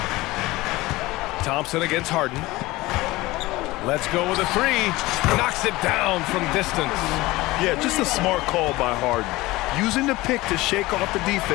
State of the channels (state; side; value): quieter; right; 19.7 dB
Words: Thompson against Harden. Let's go with a 3. Knocks it down from distance. Yeah, just a smart call by Harden. Using the pick to shake off the